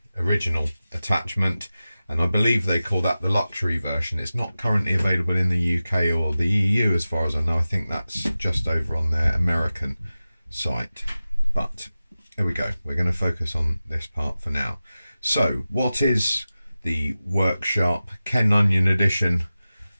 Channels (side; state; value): both; inverted; correlation -0.95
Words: original attachment, and I believe they call that the luxury version. It's not currently available in the UK or the EU as far as I know. I think that's just over on their American site, but there we go. We're going to focus on this part for now. So what is the WorkSharp Kenonion Edition